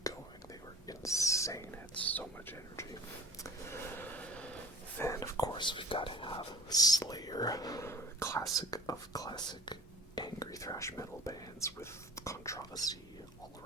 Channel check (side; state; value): both; normal; correlation 0.43